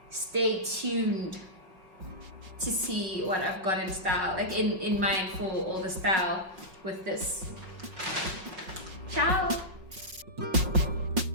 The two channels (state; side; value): late; left; 5.6 ms